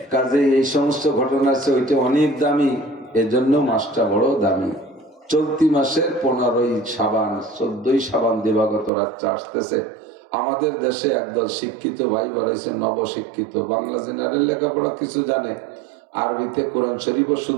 কাজে এই সমস্ত ঘটনা আছে, ওইটা অনেক দামি, এজন্য মাসটা বড় দামি। চলতি মাসের 15ই শাবান, 14ই শাবান দিবাগত রাতটা আসতেছে। আমাদের দেশে একদল শিক্ষিত ভাই বাড়াইছে, নবশিক্ষিত, বাংলা জেনারেল লেখাপড়া কিছু জানে, আরবিতে কোরআন শরীফও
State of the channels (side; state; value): left; drops out; at 8.9 s